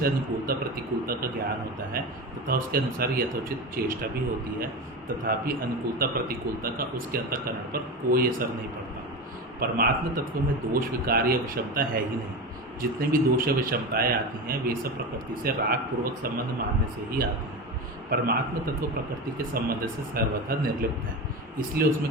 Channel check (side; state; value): both; normal; correlation 0.23